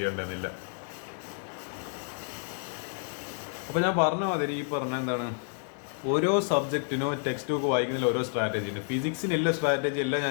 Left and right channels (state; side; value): silent; right; 56 dB below the other